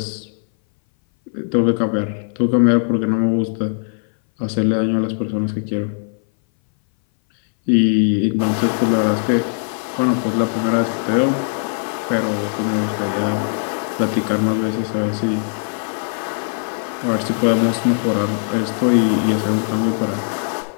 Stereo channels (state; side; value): silent; right; 60 dB below the other